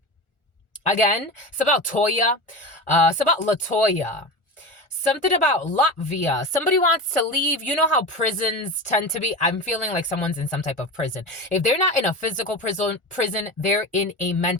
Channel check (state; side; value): late; right; 1.4 ms